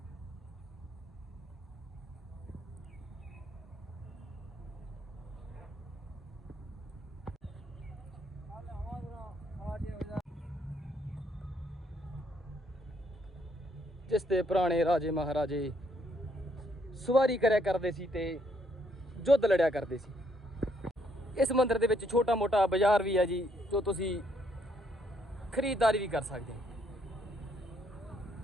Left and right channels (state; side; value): normal; both; correlation 0.71